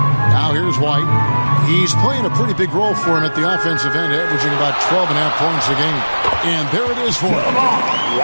Now here's White. He's playing a pretty big role for him at the offensive end, averaging about 12.5 points a game. And there it is for him.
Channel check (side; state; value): both; inverted; correlation -1.00